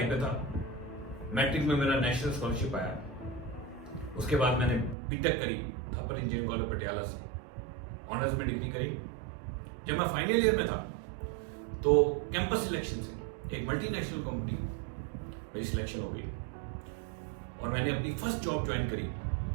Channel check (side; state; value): left; drops out; at 5.0 s